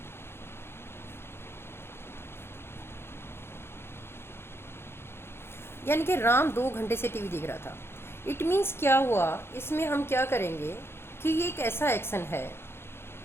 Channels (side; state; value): right; late; 0.12 ms